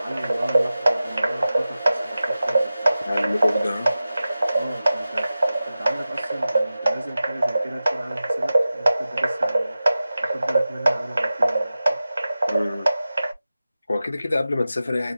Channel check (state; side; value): inverted; both; correlation -0.94